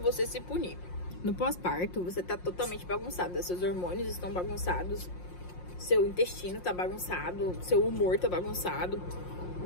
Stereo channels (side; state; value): right; late; 5.6 ms